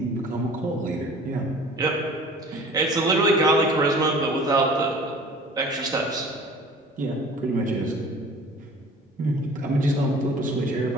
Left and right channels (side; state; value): both; normal; correlation 0.46